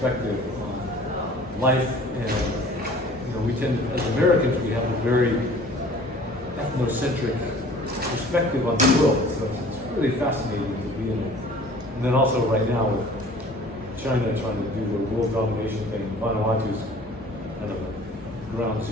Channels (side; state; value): both; normal; correlation 0.48